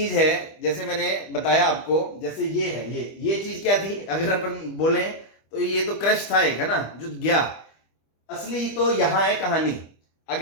है, जैसे मैंने बताया आपको, जैसे ये है, ये चीज क्या थी, अगर अपन बोले तो ये तो क्रश था एक, है ना, जो गया। असली तो यहां है कहानी।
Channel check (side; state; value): right; late; 25 ms